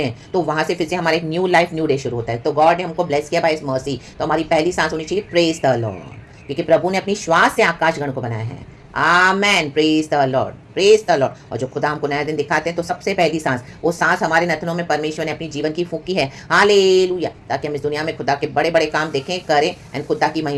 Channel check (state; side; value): identical; both; correlation 1.00